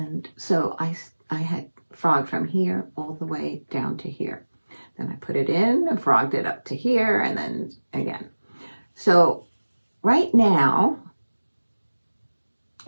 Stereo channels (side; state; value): both; inverted; correlation -1.00